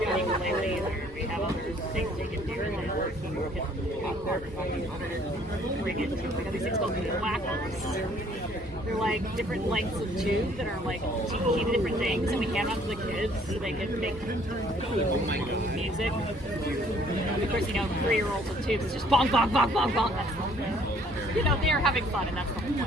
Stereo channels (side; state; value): both; normal; correlation 0.60